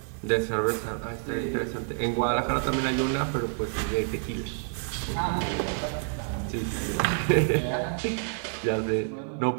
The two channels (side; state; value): left; silent; 59 dB below the other